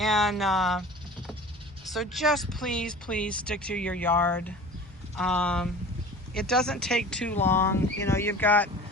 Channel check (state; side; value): normal; both; correlation 0.40